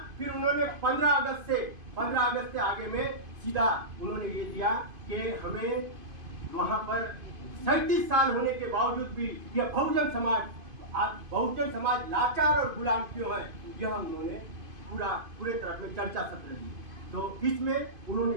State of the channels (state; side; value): late; left; 2.5 ms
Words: फिर उन्होंने 15 अगस्त से आगे में सीधा उन्होंने ये दिया कि हमें वहाँ पर 37 साल होने के बावजूद भी यह बहुजन समाज लाचार और गुलाम क्यों है, यह उन्होंने पूरे तरह में चर्चा सत्र दी। तो इसमें